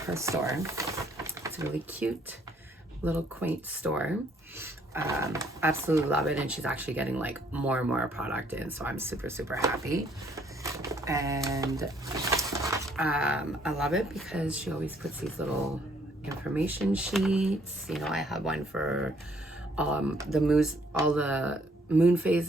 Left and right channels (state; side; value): normal; both; correlation 0.65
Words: her store. It's a really cute little quaint store. Absolutely love it, and she's actually getting like more and more product in, so I'm super, super happy. And I love it because she always puts these little information sheets. You know, I have one for all the moon